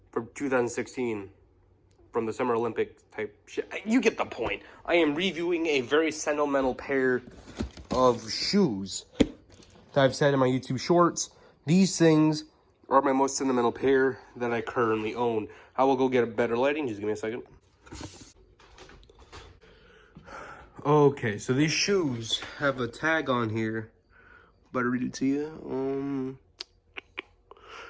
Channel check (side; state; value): both; identical; correlation 1.00